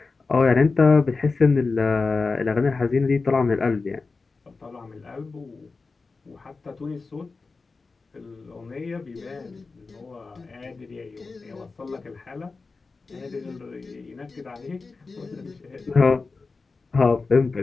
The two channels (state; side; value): quieter; right; 4.1 dB